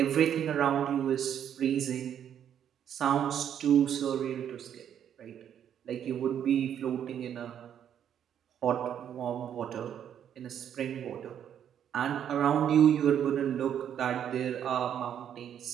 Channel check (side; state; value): left; quieter; 9.4 dB